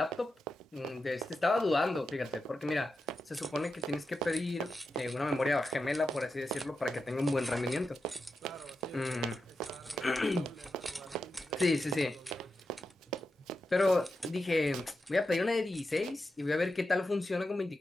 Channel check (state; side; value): normal; both; correlation 0.89